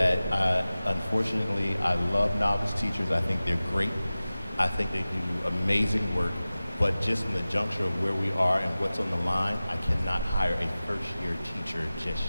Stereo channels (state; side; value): inverted; both; correlation -0.97